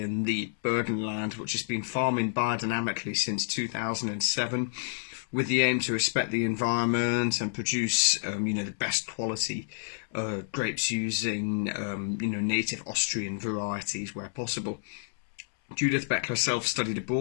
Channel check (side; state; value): right; silent; 58 dB below the other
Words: the Burgenland, which has been farming biodynamically since 2007, with the aim to respect the environment and produce, the best quality grapes using, native Austrian varieties where possible. Judith Beck herself studied